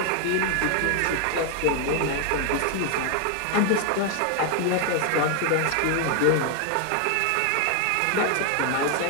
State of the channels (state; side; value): different; both; correlation 0.00